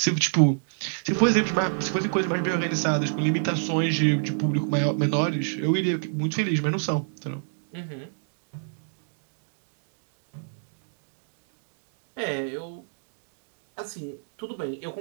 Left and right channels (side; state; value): left; silent; digital silence